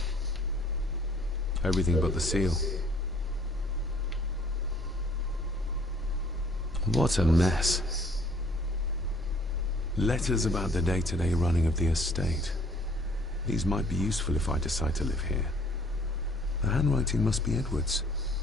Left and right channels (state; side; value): normal; both; correlation 0.58